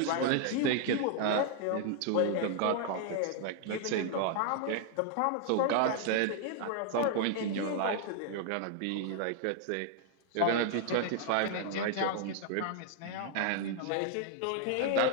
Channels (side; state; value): both; different; correlation 0.00